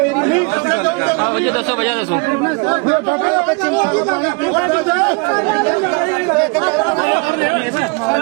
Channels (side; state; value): left; quieter; 30.7 dB